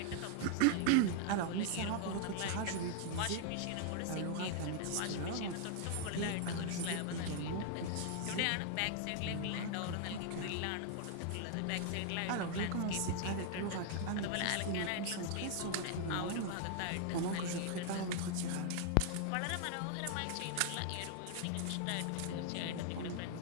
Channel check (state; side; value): different; both; correlation 0.00